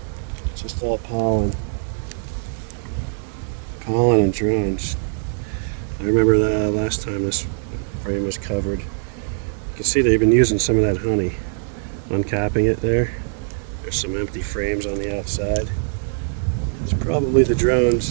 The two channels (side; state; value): left; silent; digital silence